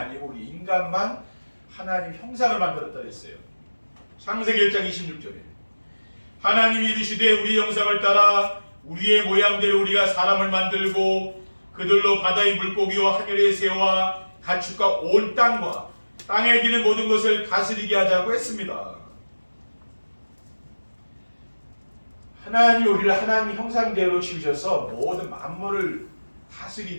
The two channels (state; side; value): inverted; both; correlation -1.00